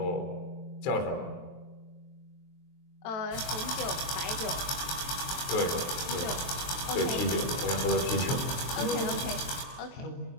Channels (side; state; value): right; late; 22 ms